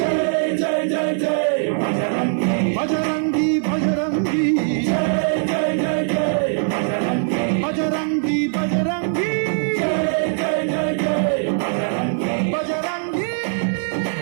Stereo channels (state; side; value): silent; left; 58 dB below the other